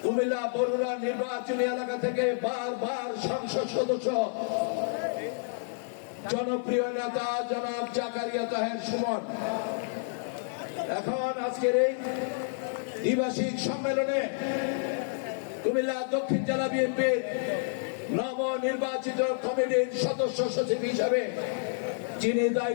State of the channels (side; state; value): right; silent; digital silence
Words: কুমিল্লা বরুড়া নির্বাচনী এলাকা থেকে বারবার সংসদ সদস্য, জনপ্রিয় নেতা জনাব জাকারিয়া তাহের সুমন, এখন আজকের এই দ্বিবার্ষিক সম্মেলনে কুমিল্লা দক্ষিণ জেলা বিএনপির নবনির্বাচিত কমিটির সদস্য সচিব হিসাবে যিনি